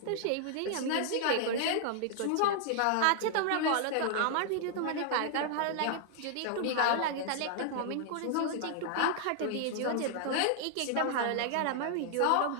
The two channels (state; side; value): different; both; correlation -0.01